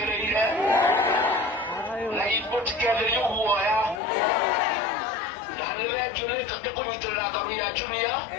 na ipotikere y'ubuoya na nilejune kakunyitirira ngaru ya junior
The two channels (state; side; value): drops out; right; at 4.0 s